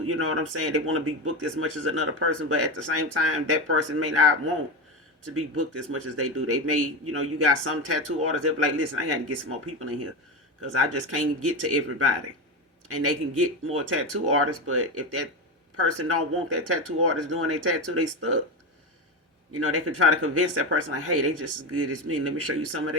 you know what I'm saying? They want to be booked as much as another person, but at the same time, that person may not want to be booked as much as they do. They may, you got some tattoo artists, they'll be like, listen, I got to get some more people in here because I just can't get to everybody. And they can get more tattoo artists, but if that person don't want that tattoo artist doing their tattoo, they stuck. They can try to convince that person like, hey, they just as good as me. Let me show you some of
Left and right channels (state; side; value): normal; both; correlation 0.18